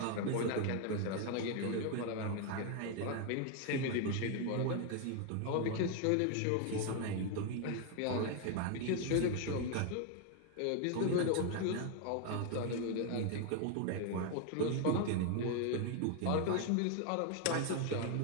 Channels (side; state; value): both; different; correlation 0.01